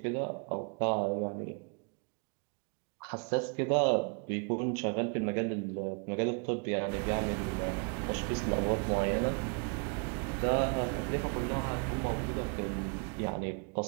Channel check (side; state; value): left; quieter; 38.0 dB